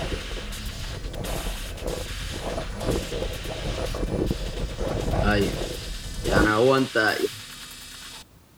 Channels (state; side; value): identical; both; correlation 1.00